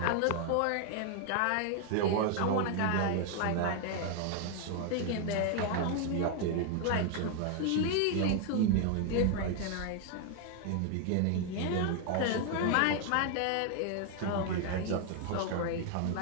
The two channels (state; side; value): different; both; correlation 0.00